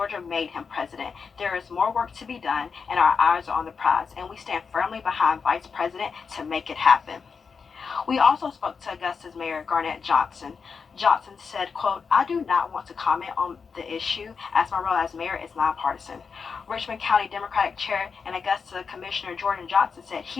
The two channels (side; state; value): right; quieter; 5.6 dB